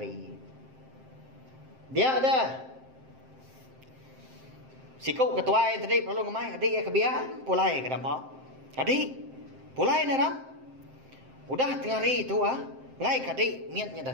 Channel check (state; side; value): late; left; 7.6 ms